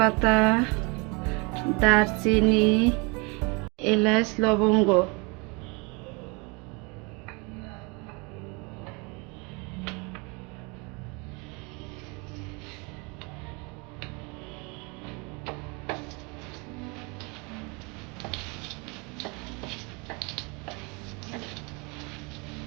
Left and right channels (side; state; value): left; quieter; 29.9 dB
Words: দারচিনি, এলাচ, লবঙ্গ।